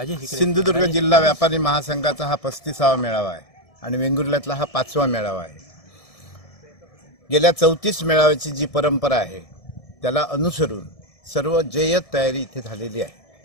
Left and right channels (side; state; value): right; late; 1.7 ms